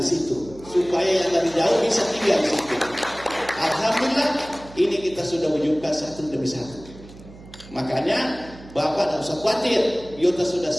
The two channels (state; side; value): noise; right; hum, 19 dB below the sound